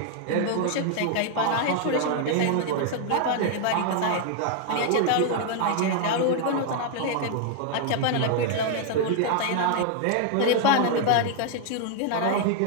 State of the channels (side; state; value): both; different; correlation 0.00